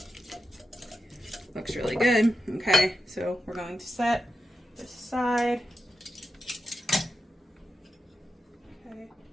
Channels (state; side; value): normal; both; correlation 0.89